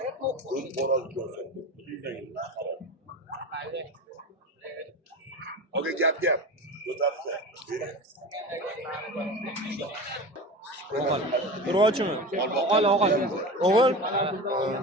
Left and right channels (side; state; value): both; normal; correlation 0.30